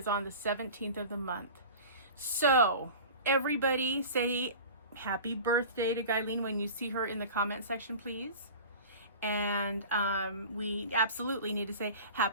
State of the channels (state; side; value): inverted; both; correlation -0.37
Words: on the 17th of the month. So, everybody say happy birthday to Guyleen when you see her in the comment section, please. And we absolutely need to say